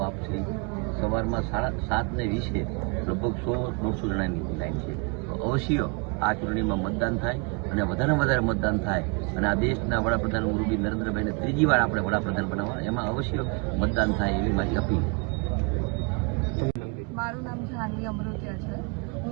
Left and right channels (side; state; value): left; quieter; 32.2 dB